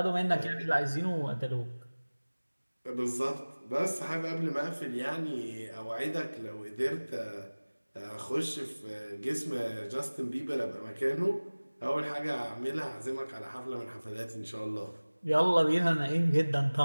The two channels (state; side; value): inverted; both; correlation -1.00